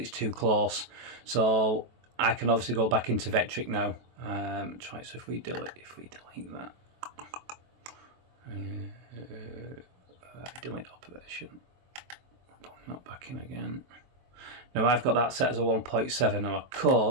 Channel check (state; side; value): late; left; 23 ms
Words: too close. So I can obviously go back into Vectric now. Try. So if we delete that, delete operation. Not back in again. Now I've got that set as a 1.7. Now I